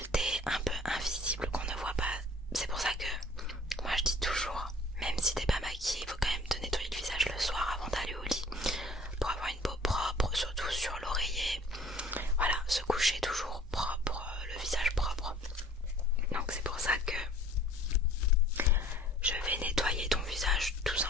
un peu invisibles qu'on ne voit pas. C'est pour ça que moi je dis toujours, même si t'es pas maquillée, il faut quand même te nettoyer le visage le soir avant d'aller au lit pour avoir une peau propre, surtout sur l'oreiller. Voilà, se coucher toujours propre, le visage propre. Donc c'est pour ça que je vais nettoyer ton visage tout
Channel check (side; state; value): both; normal; correlation 0.51